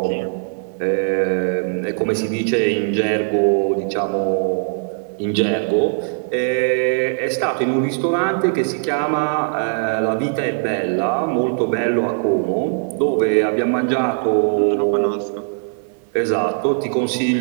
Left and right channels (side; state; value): left; silent; digital silence